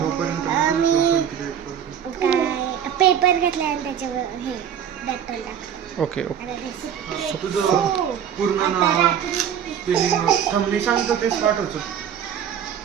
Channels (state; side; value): quieter; left; 8.8 dB